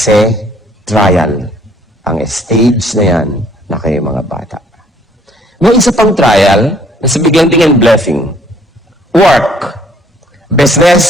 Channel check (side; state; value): both; normal; correlation 0.61